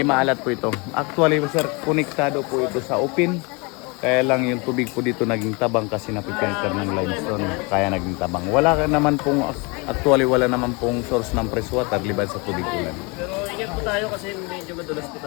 maalat po ito. Actually sir, konektado po ito sa open. Kaya lang yung tubig po dito naging tabang kasi napipenter ng limestone. Kaya naging tabang. Wala naman pong, actually wala naman pong source ng fresh water liban sa tubig ulan. Pero ingat po tayo kasi medyo madulas po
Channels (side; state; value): right; quieter; 29.1 dB